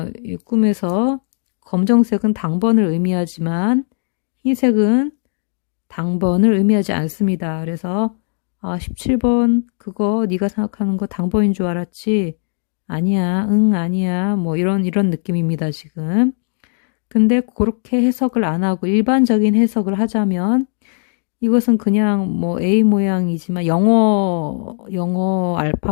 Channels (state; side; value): silent; right; 57 dB below the other